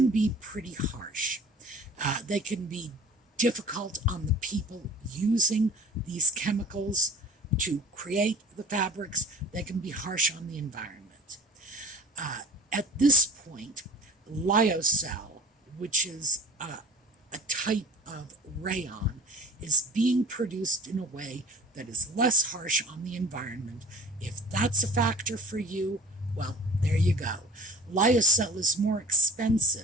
be pretty harsh. They can be difficult on the people using these chemicals to create the fabrics. They can be harsh on the environment. At this point, lyocell, which is a type of rayon, is being produced in a way that is less harsh on the environment. If that's a factor for you, well, there you go. Lyocell is more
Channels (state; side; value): normal; both; correlation 0.44